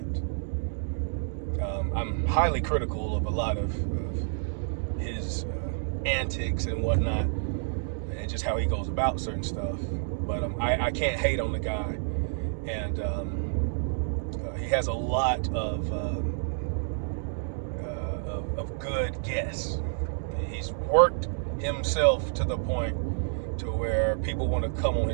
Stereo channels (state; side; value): silent; left; digital silence